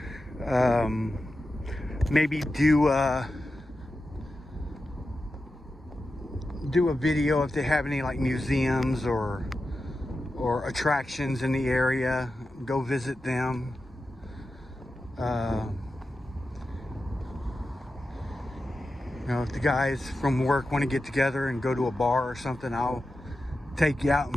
Maybe do a video if they have any like museums or attractions in the area. Go visit them. You know, if the guys from work want to get together and go to a bar or something, I'll take you out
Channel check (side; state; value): both; normal; correlation 0.91